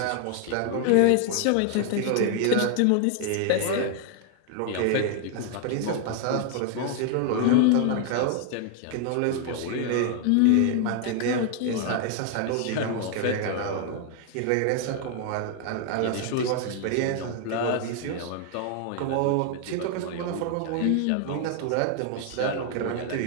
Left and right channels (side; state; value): both; different; correlation 0.00